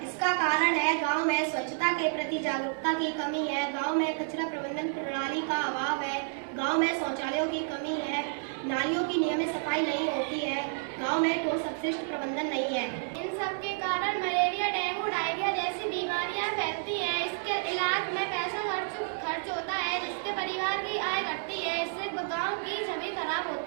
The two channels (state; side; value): silent; left; digital silence